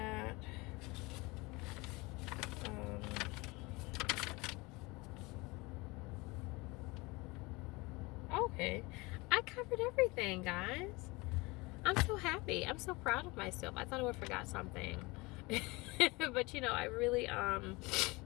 Okay, I covered everything, guys. I'm so happy. I'm so proud of myself. I thought I would have forgot something. But I really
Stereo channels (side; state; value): right; quieter; 24.4 dB